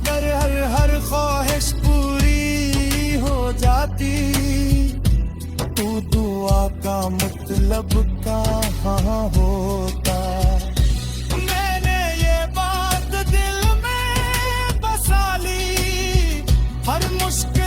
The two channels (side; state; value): both; identical; correlation 1.00